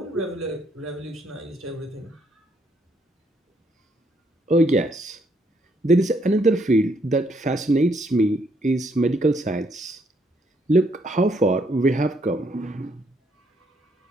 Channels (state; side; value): normal; both; correlation 0.71